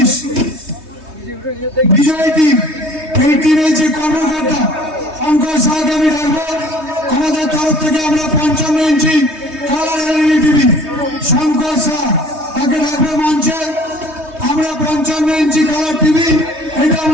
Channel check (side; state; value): left; late; 3.2 ms